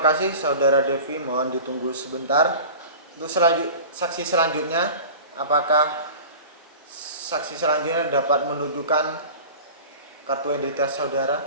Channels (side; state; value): both; inverted; correlation -0.38